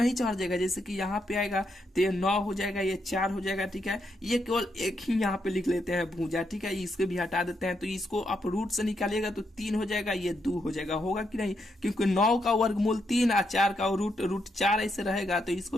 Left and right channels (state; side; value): normal; both; correlation 0.79